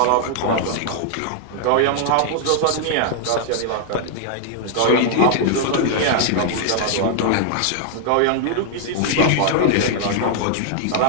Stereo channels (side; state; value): both; different; correlation 0.00